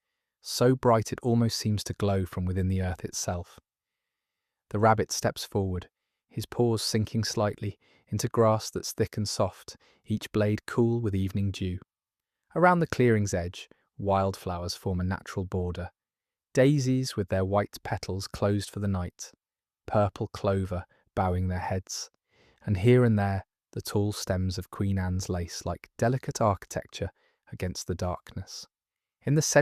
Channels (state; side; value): identical; both; correlation 1.00